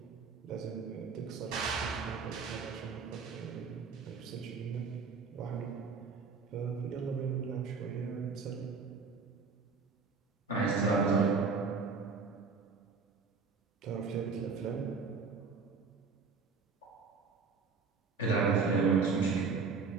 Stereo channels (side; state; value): left; quieter; 5.0 dB